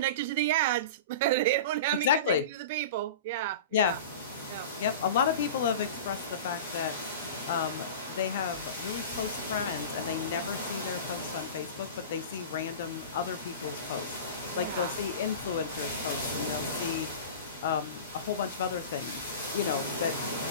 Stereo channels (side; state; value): both; inverted; correlation -0.32